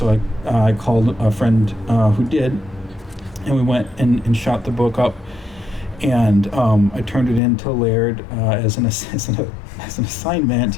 I called a friend who did. And we went and shot the book up. And I turned it in to Laird as an assignment.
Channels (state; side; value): drops out; right; at 7.4 s